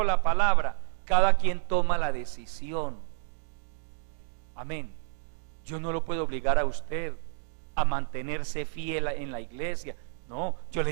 la palabra. Cada quien toma la decisión. Amén. Yo no lo puedo obligar a usted a mantenerse fiel en la iglesia. No, yo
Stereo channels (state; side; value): silent; left; digital silence